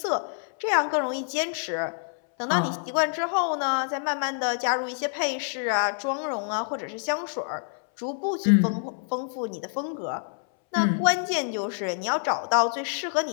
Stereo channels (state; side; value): silent; right; 60 dB below the other